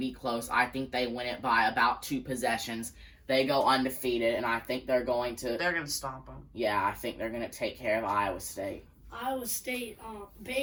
close. I think they win it by about 2 possessions. They go undefeated, and I think they're going to... They're going to stomp them. Yeah, I think they're going to take care of Iowa State. Iowa State,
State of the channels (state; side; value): identical; both; correlation 1.00